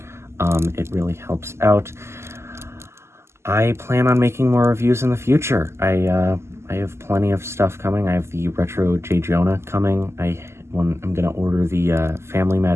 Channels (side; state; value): left; late; 0.13 ms